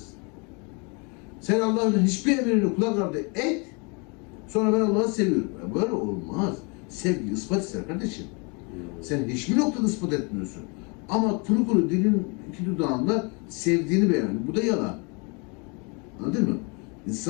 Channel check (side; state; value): right; quieter; 32.5 dB